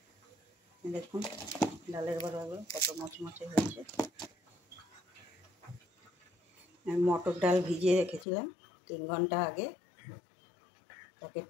দেখুন ডালের বড়াগুলো কত মচমচে হয়েছে। আমি মটর ডাল ভিজিয়ে রেখেছিলাম 3 ঘন্টা আগে, তাকে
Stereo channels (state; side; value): drops out; right; at 8.2 s